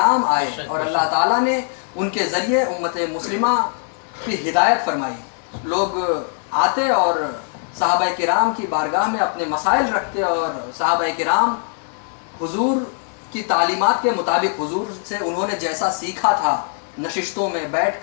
آئے اور اللہ تعالیٰ نے ان کے ذریعے امت مسلمہ کی ہدایت فرمائی. لوگ آتے اور صحابہ کرام کی بارگاہ میں اپنے مسائل رکھتے اور صحابہ کرام حضور کی تعلیمات کے مطابق حضور سے انہوں نے جیسا سیکھا تھا، نشستوں میں بیٹھ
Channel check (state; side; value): silent; right; 60 dB below the other